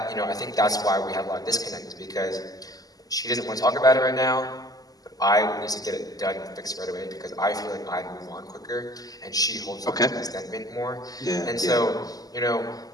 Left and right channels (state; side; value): late; right; 0.18 ms